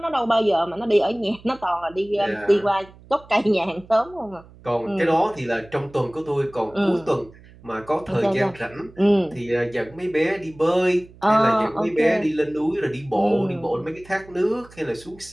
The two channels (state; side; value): noise; right; hum, 23 dB below the sound